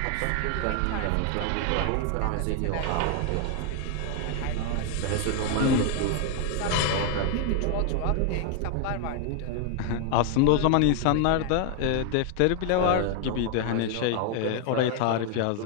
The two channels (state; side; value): different; both; correlation 0.00